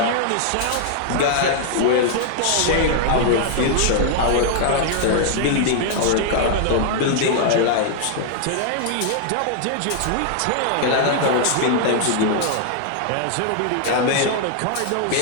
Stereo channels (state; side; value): different; both; correlation -0.01